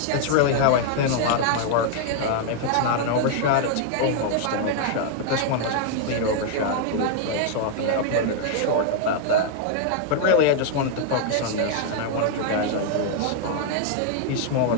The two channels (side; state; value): both; different; correlation 0.00